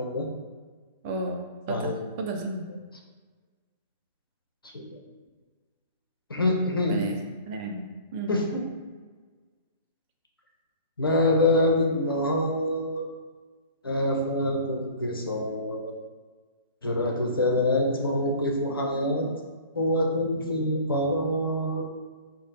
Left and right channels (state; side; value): inverted; both; correlation -0.44